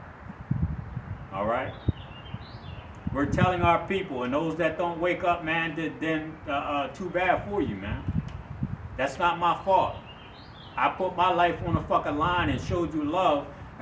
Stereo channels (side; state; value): both; identical; correlation 1.00